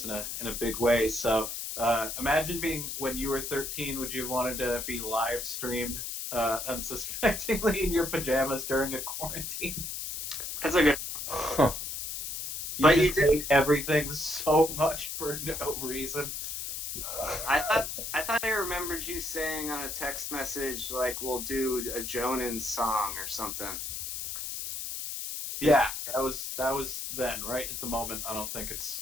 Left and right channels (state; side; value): noise; left; hiss, 5 dB below the sound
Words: in a big way. So imagine being when you were 13. Would you have wanted to be live streamed unsuspectingly in your pajamas during a quarantine? That's a good... Huh. You just hate everything so much for no reason. I thought I remembered you saying on a text message, like, we'll do a Jonan song or something. Yeah, that was then. Right at the moment, I don't think